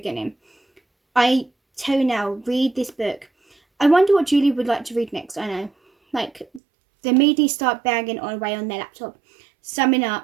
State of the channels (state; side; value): drops out; left; at 6.6 s